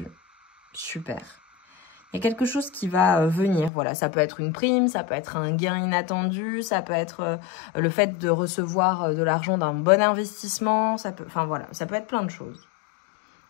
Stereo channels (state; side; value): drops out; right; at 3.7 s